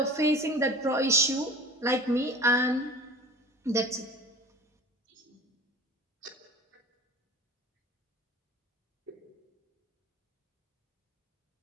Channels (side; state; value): both; normal; correlation 0.40